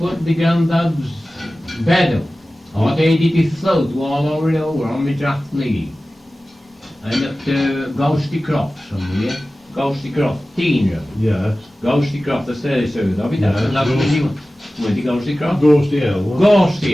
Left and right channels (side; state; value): both; normal; correlation 0.96